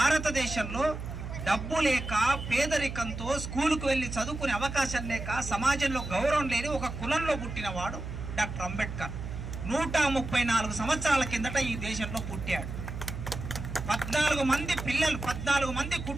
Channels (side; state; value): right; noise; hum, 7 dB below the sound